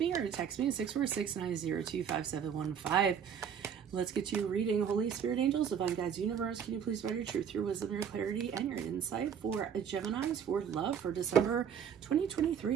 me or to text me at 646-902-5715. Let's get to your reading. Holy Spirit, angels, divine guides, universe, can you please provide your truth, your wisdom, your clarity, and your insight for Geminis for love for December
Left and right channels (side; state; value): left; quieter; 7.8 dB